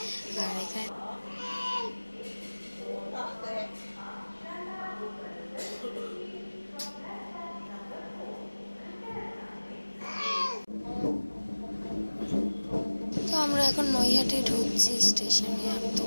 আর এখানে তো আমরা এখন নৈহাটি ঢুকছি স্টেশনে। একদম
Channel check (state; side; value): inverted; both; correlation -1.00